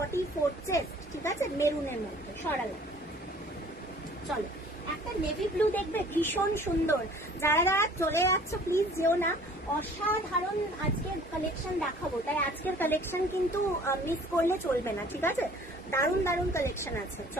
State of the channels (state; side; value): normal; both; correlation 0.51